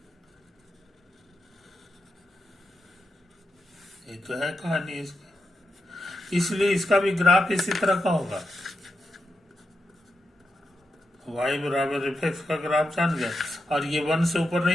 ये तो है कहानी इसकी, इसलिए इसका भी ग्राफ इसी तरह का होगा। y बराबर एफ एक्स का ग्राफ जान गए, और ये 1 से ऊपर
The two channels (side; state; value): both; normal; correlation 0.87